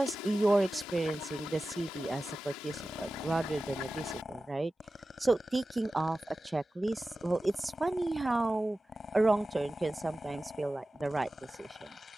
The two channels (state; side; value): normal; both; correlation 0.95